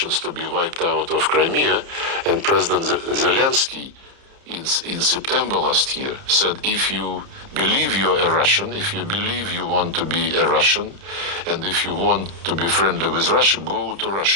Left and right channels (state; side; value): late; left; 30 ms